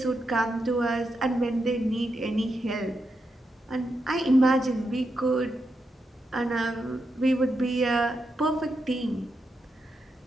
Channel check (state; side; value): normal; both; correlation 0.85